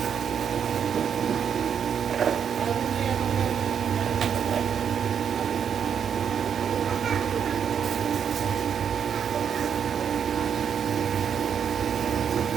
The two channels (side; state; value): left; quieter; 7.7 dB